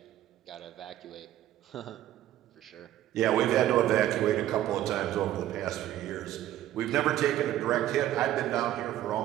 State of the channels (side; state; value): left; quieter; 13.0 dB